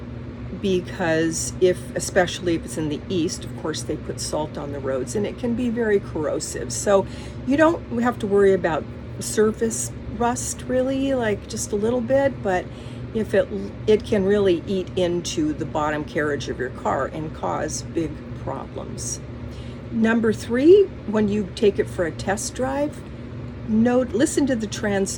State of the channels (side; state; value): both; identical; correlation 1.00